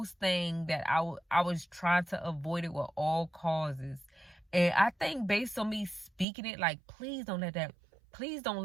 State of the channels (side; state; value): left; drops out; at 6.2 s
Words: thing that I was trying to avoid it with all causes. And I think based on me speaking it, like, please don't